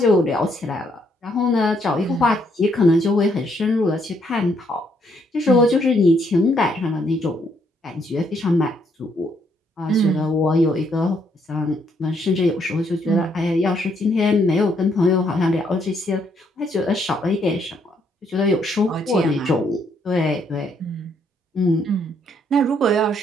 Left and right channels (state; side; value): normal; both; correlation 0.71